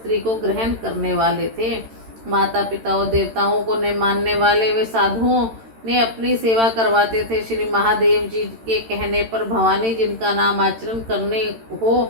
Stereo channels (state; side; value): late; left; 13 ms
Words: को ग्रहण करने वाले थे। माता पिता और देवताओं को न मानने वाले वे साधुओं ने अपनी सेवा करवाते थे। श्री महादेव जी के कहने पर भवानी जिनका नाम आचरण करने हो,